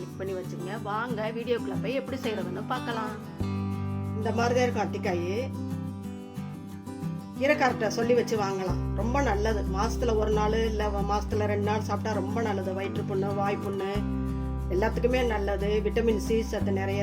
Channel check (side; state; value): both; identical; correlation 1.00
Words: பண்ணி வச்சுங்க. வாங்க வீடியோக்குள்ளே போய் எப்படி செய்கிறதுன்னு பார்க்கலாம். இந்த மாதிரி தான் இருக்கும் அத்திக்காய். கீரைக்கார்ட்ட சொல்லி வச்சு வாங்கலாம். ரொம்ப நல்லது. மாதத்தில் ஒரு நாள் இல்லை மாதத்தில் 2 நாள் சாப்பிட்டா ரொம்ப நல்லது. வயிற்று புண்ணு, வாய் புண்ணு எல்லாத்துக்குமே நல்லது. விட்டமின் சி சத்து